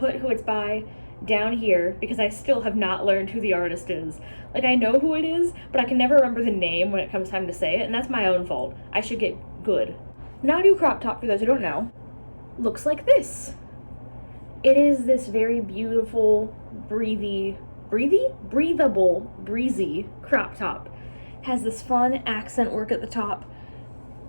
who it's by down here because I still have not learned who the artist is. Like, I know who it is, but I can never remember the name when it comes time to say it, and that's my own fault. I should get good. Nadu crop top, for those who don't know, looks like this. It is this very beautiful, breezy crop top. Has this fun accent work at the top.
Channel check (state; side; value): inverted; both; correlation -1.00